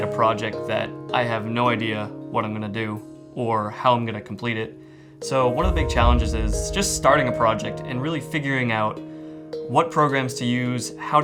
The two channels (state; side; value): identical; both; correlation 1.00